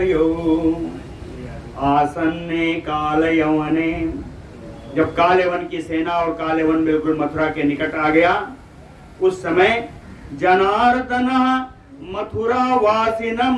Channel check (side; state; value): both; identical; correlation 1.00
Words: आसन्ने काल यवने, जब काल यवन की सेना और काल यवन बिल्कुल मथुरा के निकट आ गया, उस समय जनार्दनः मथुरा वासिनम